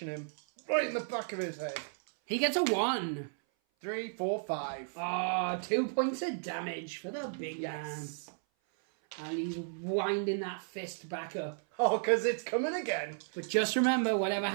him right in the back of his head. He gets a 1. 3, 4, 5. Ah, 2 points of damage for the big man. And he's winding that fist back up. Oh, because it's coming again. But just remember, whatever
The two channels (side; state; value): left; silent; 55 dB below the other